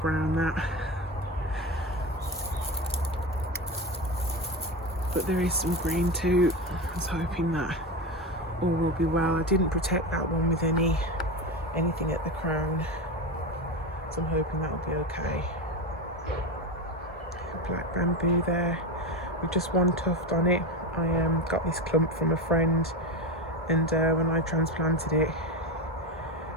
brown, that. But there is some green too. I was hoping that all will be well. I didn't protect that one with anything at the crown, so I'm hoping that will be okay. Black bamboo there with just one tuft on it. I got this clump from a friend, and when I transplanted it,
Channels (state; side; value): normal; both; correlation 0.19